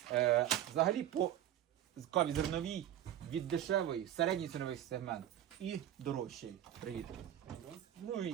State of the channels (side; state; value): left; quieter; 11.5 dB